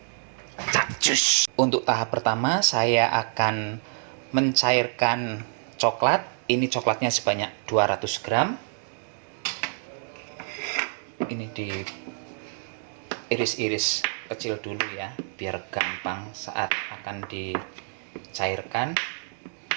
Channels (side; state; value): left; silent; 59 dB below the other